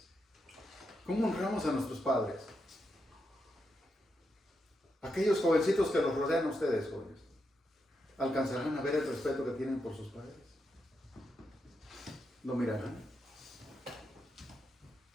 ¿Cómo honramos a nuestros padres? Aquellos jovencitos que los rodean a ustedes, jóvenes, ¿alcanzarán a ver el respeto que tienen por sus padres? ¿Lo mirarán?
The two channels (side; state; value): both; normal; correlation 0.84